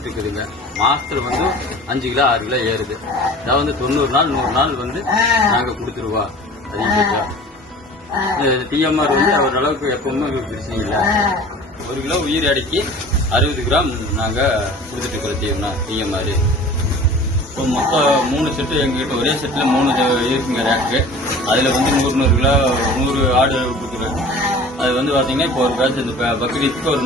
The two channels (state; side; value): normal; both; correlation 0.43